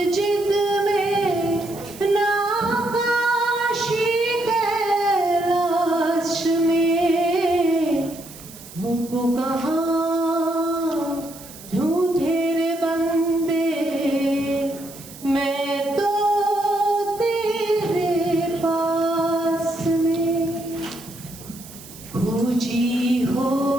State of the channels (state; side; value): noise; right; hiss, 17 dB below the sound